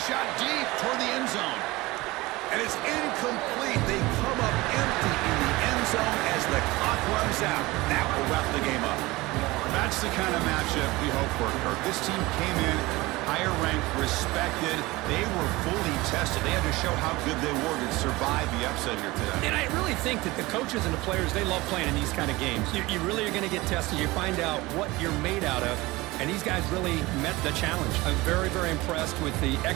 shot deep toward the end zone. And it's incomplete. They come up empty in the end zone as the clock runs out. That will wrap the game up. That's the kind of matchup we hope for, Kirk. This team came in higher ranked, respected. They were fully tested. They had to show how good they were to survive the upset here today. And I really think that the coaches and the players, they love playing in these kind of games. You really are going to get tested. You find out what you're made out of. And these guys really met the challenge. I'm very, very impressed with the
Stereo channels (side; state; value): left; quieter; 20.9 dB